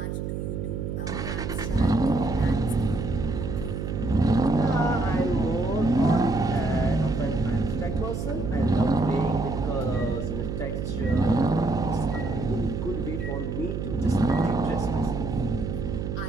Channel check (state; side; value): noise; right; hum, 4 dB below the sound